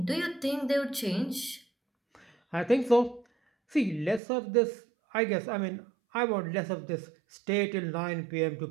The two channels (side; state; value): left; drops out; at 4.2 s